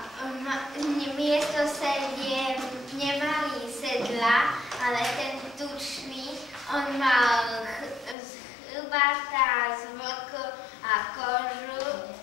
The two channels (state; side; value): drops out; right; at 8.2 s